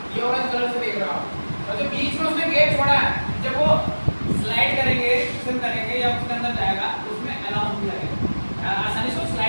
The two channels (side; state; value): both; inverted; correlation -1.00